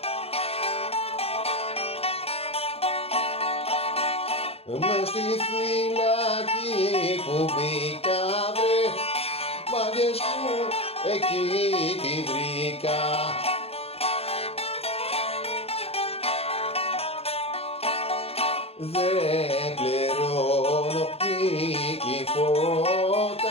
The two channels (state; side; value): late; right; 0.29 ms